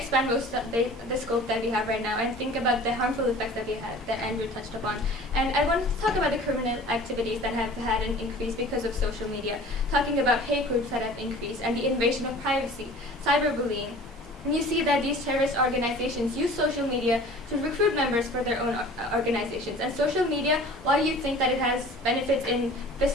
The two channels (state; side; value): normal; both; correlation 0.44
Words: most of the scope that we have right now and think about the harmful effects that we had, that Andrew touched upon. And I wanted to talk about the criminal activities that have had an increase because of social media, talking about hate groups that have increased and the invasion of privacy, cyberbullying. And you see that these terrorist organizations use social media to recruit members for their own organizations. And social media, while you think that it has benefits in